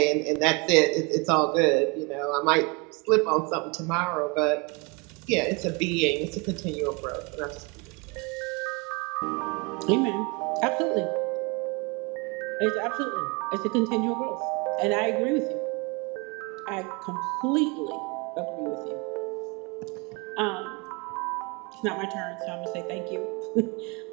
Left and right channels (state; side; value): quieter; left; 29.8 dB